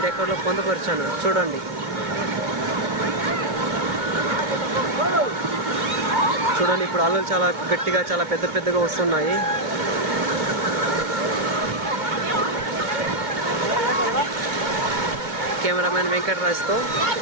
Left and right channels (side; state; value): left; late; 2.2 ms